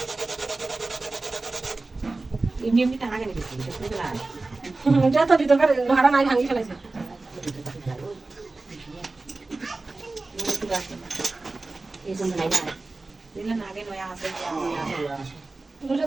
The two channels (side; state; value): left; quieter; 3.4 dB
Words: এমনি এমনি টাকা কেন দিচ্ছি দেখতে পেলাম যত ভিতরকার লোহাটা নাই ভাঙি ফেলেছে এই জন্য নাই না দিলেন আগে নয়া আছে দুটো